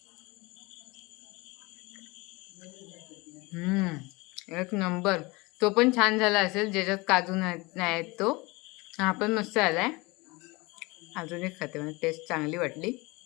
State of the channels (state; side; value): quieter; right; 24.5 dB